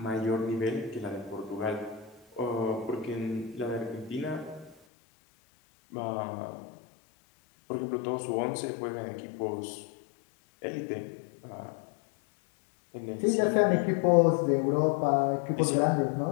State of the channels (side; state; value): right; drops out; at 4.8 s